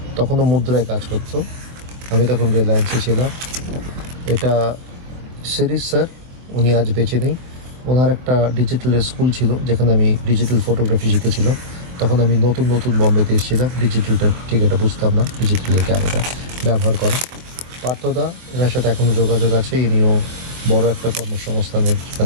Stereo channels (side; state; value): left; late; 23 ms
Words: তখনও মুদ্রায় কাজ করতো, আমি তখন রিলায়েন্সে ছিলাম। এটা সিরিজ স্যার, উনি আজ বেঁচে নেই। ওনার একটা ডিজিটালের স্কুল ছিল যেখানে আমি ডিজিটাল ফটোগ্রাফি শিখেছিলাম। তখন আমি নতুন বম্বেতে এসেছিলাম, ডিজিটালটা ঠিক এটা বুঝতাম না, ডিজিটালের ক্যামেরা ব্যবহার করা। পার্থদা, এনার সাথে এখনও যোগাযোগ আছে। ইনিও বড় একটা কর্মসংস্থানের